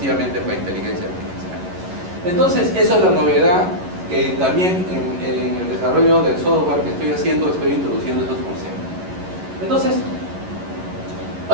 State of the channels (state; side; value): late; left; 11 ms